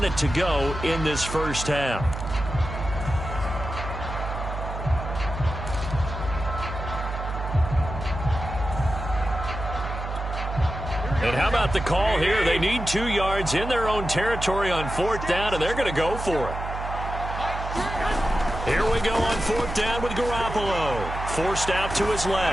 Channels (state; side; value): noise; right; hum, 7 dB below the sound